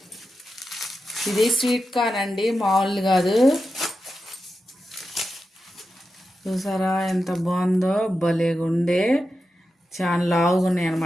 ఇది స్వీట్ కార్న్ అండి, మామూలు కాదు. చూసారా ఎంత బాగుందో, భలేగుండే. చాలా లావుగా ఉన్నాయి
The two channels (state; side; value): normal; both; correlation 0.90